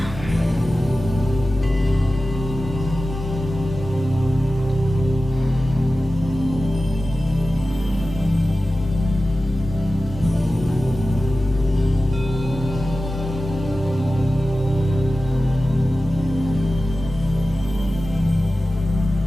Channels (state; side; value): normal; both; correlation 0.95